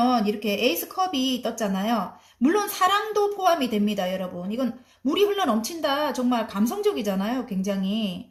이렇게 에이스 컵이 떴잖아요. 물론 사랑도 포함이 됩니다, 여러분. 이건 물이 흘러 넘친다. 정말 감성적이잖아요,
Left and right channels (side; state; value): both; identical; correlation 1.00